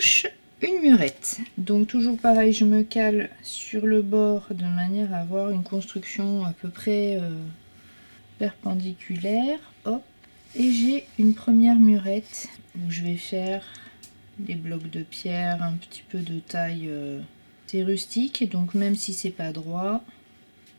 une murette. Donc toujours pareil, je me cale sur le bord de manière à avoir une construction à peu près perpendiculaire, hop, et j'ai une première murette où je vais faire des blocs de pierre un petit peu de taille c'est rustique, et donc même si c'est pas droit,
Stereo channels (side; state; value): both; inverted; correlation -1.00